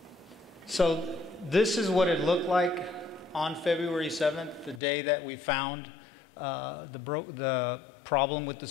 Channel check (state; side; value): drops out; right; at 4.8 s